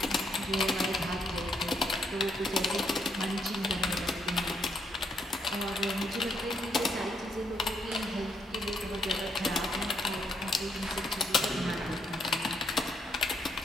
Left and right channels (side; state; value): both; normal; correlation 0.74